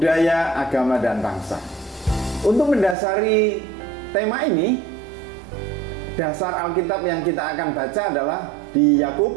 agama, dan bangsa. Untuk mendasari tema ini, dasar Alkitab yang kita akan baca adalah di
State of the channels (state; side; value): drops out; left; at 3.0 s